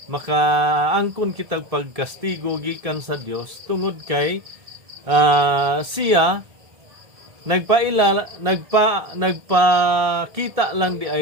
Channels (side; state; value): left; late; 1.7 ms